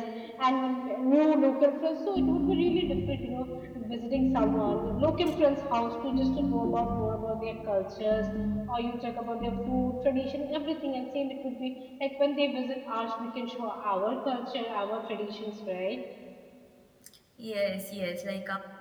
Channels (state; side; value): identical; both; correlation 1.00